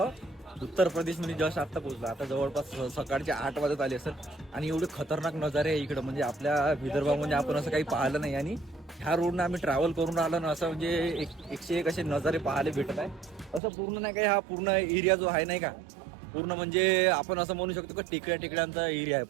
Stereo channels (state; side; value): drops out; left; at 13.6 s